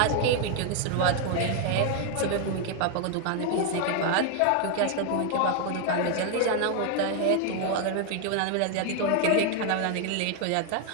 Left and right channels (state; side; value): different; both; correlation 0.00